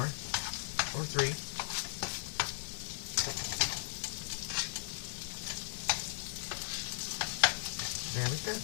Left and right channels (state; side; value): silent; right; 53 dB below the other